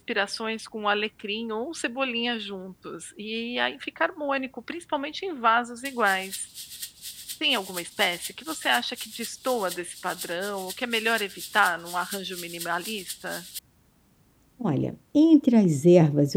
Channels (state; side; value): identical; both; correlation 1.00